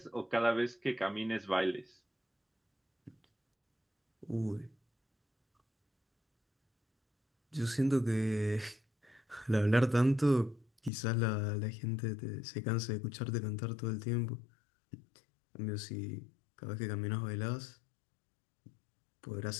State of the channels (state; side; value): drops out; right; at 10.9 s